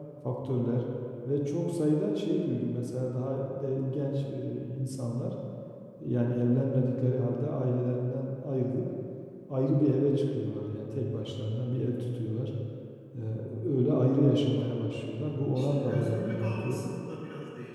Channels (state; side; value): identical; both; correlation 1.00